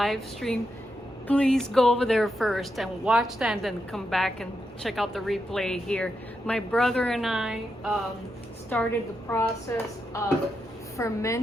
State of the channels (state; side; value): normal; both; correlation 0.85